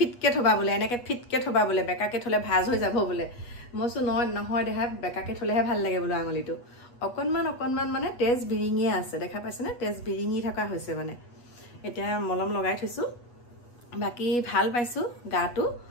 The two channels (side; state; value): right; late; 8.3 ms